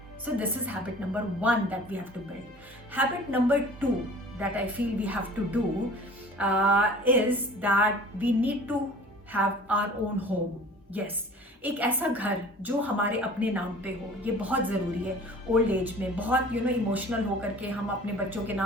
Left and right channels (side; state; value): both; normal; correlation 0.45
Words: So this is habit number one that we have to build. Habit number two that I feel we have to do is that we need to have our own home. Yes, एक ऐसा घर जो हमारे अपने नाम पे हो, ये बहुत ज़रूरी है. ओल्ड एज में बहुत इमोशनल होकर के हम अपने बच्चों के